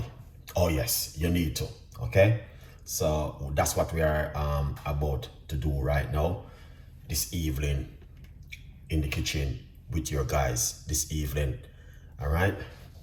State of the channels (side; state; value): both; identical; correlation 1.00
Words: Oh yes, you need to. Okay, so that's what we are about to do right now, this evening, in the kitchen with your guys this evening. All right.